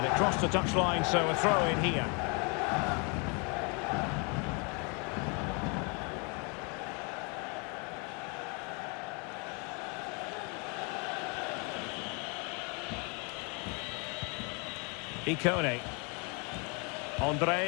it crossed the touchline, so a throw in here. Icone.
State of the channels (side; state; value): right; quieter; 33.5 dB